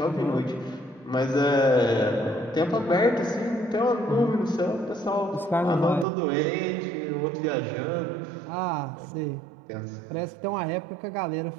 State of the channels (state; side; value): drops out; left; at 6.1 s